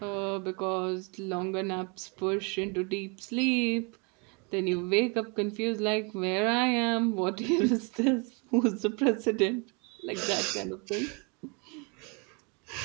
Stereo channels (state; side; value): quieter; left; 32.8 dB